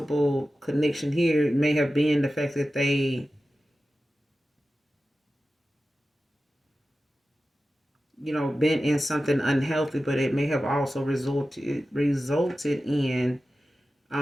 connection here may have been the fact that they, been in something unhealthy, but it may have also resulted in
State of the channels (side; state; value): both; normal; correlation 0.94